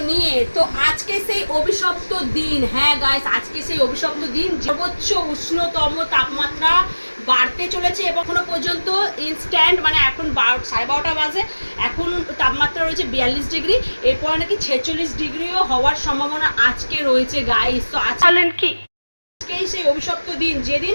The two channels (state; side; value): inverted; both; correlation -1.00